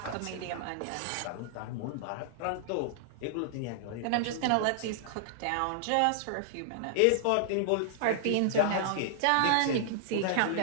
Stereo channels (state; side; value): different; both; correlation -0.01